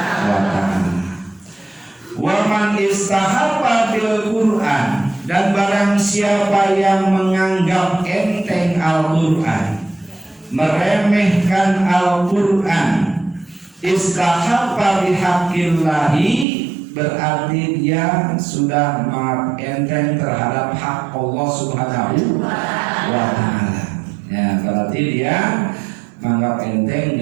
Ta'ala. Wa man istahabba bil Quran, dan barang siapa yang menganggap enteng Al-Quran, meremehkan Al-Quran, istahabba bihaqqillahi, berarti dia sudah enteng terhadap hak Allah Subhanahu wa Ta'ala. Ya, berarti dia menganggap enteng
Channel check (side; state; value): left; drops out; at 16.4 s